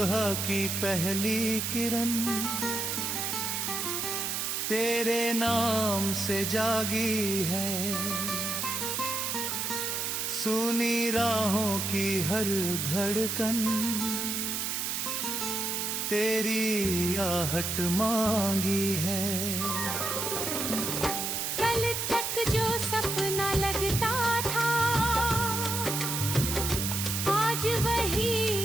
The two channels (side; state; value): right; noise; hiss, 1 dB below the sound